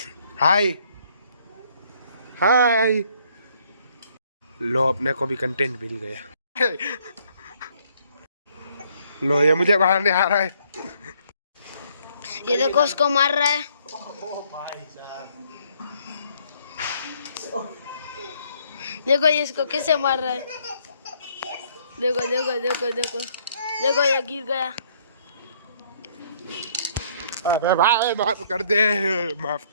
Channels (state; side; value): inverted; both; correlation -0.65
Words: हाय लो अपने को भी कंटेंट मिल गया लो ये मुझे बाहर नहीं आ रहा है ये देखो उसको मार रहा है देखो ये इसको कैसे मार रहा है देखो ये गिर गया भाई माफ कर